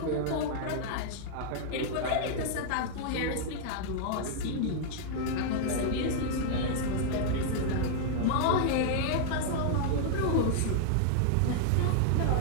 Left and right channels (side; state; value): both; different; correlation -0.01